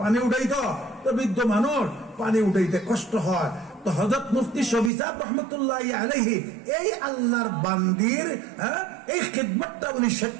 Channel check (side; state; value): left; drops out; at 4.9 s